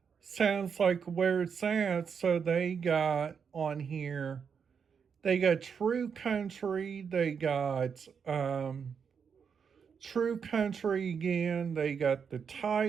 sounds like where it's at, so they got on here, they got True Country, they got True Country again, they got the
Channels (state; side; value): quieter; left; 6.6 dB